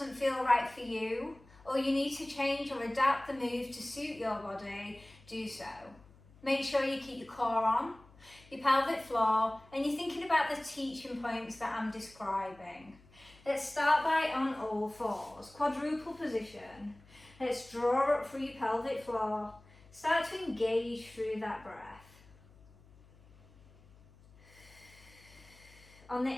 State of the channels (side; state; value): left; noise; hum, 25 dB below the sound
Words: feel right for you, or you need to change or adapt the move to suit your body, do so. Make sure you keep your core on, your pelvic floor, and you're thinking about the teaching points that I'm describing. Let's start by on all fours, quadruple position. Let's draw up through your pelvic floor. Start to engage through that breath. On the